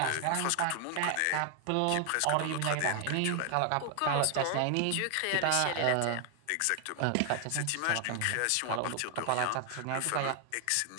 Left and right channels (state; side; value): different; both; correlation 0.00